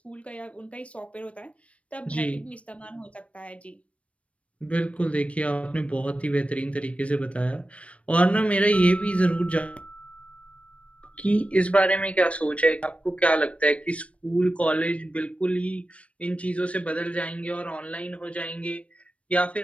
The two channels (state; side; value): late; right; 0.063 ms